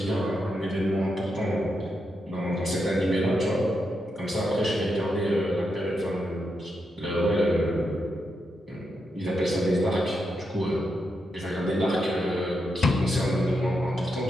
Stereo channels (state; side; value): normal; both; correlation 0.84